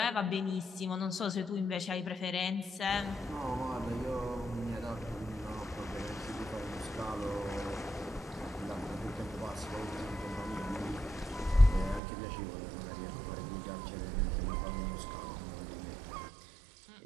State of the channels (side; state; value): left; drops out; at 12.0 s